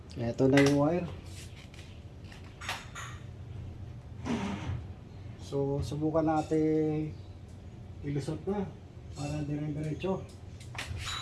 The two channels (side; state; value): both; identical; correlation 1.00